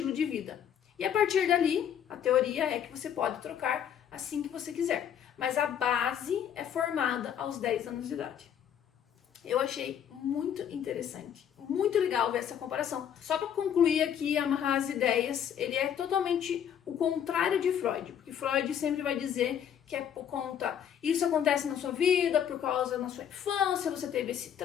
de vida. E a partir dali, a teoria é que você pode trocar assim que você quiser. Mas a base é formada aos 10 anos de idade. Eu achei muito interessante, muito legal ver essa comparação. Só para concluir aqui, amarrar as ideias, ele é totalmente o contrário de Freud, porque Freud sempre vai dizer que é por conta, isso acontece na sua vida, por causa da sua infância, você teve esse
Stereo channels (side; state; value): right; quieter; 9.0 dB